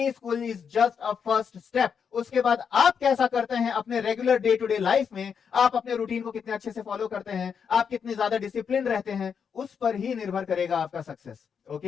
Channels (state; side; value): quieter; right; 6.8 dB